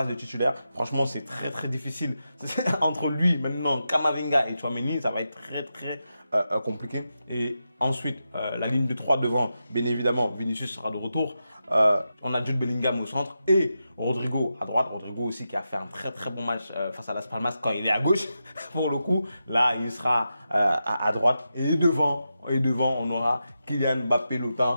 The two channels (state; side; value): inverted; both; correlation -0.89